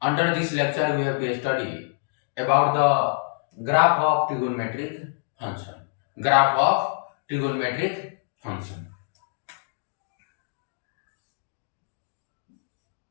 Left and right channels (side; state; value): right; silent; digital silence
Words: Under this lecture, we have to study about the graph of trigonometric function. Graph of trigonometric function.